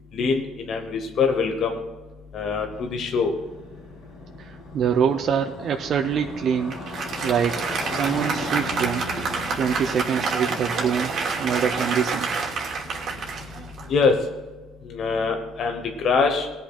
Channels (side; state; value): both; normal; correlation 0.62